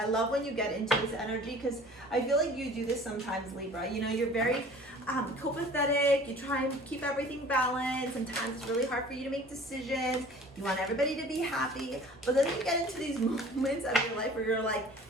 love when you get into this energy because I feel like you do this sometimes, Libra. You know, you're very copacetic. You try and keep everything balanced. Sometimes it's really hard for you to make decisions. You want everybody to be happy. But then you get into these moments of your life where you're like,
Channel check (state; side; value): normal; both; correlation 0.47